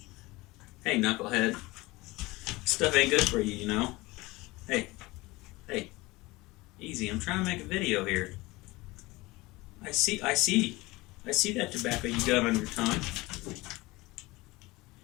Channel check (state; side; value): quieter; right; 21.5 dB